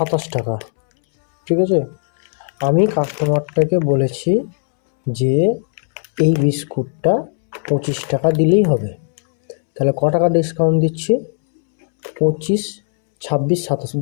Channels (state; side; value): silent; right; 68 dB below the other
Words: টাকা। ঠিক আছে, আমি কাস্টমারটাকে বলেছি যে এই বিস্কুটটা 25 টাকা দিলেই হবে। তাহলে ক টাকা ডিসকাউন্ট দিচ্ছি? 25, 26, 27,